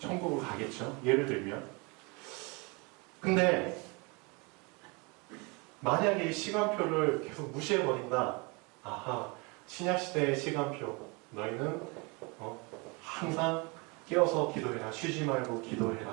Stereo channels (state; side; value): quieter; left; 29.1 dB